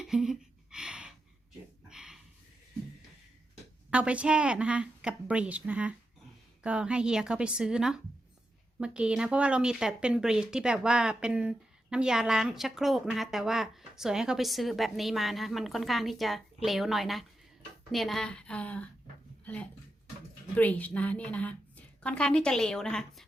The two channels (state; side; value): normal; both; correlation 0.88